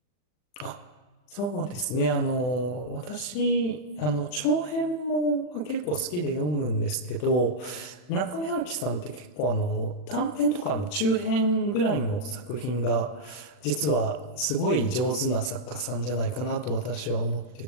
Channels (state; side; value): late; right; 40 ms